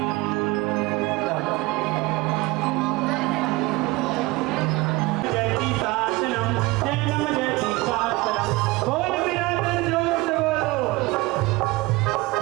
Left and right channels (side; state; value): left; quieter; 22.0 dB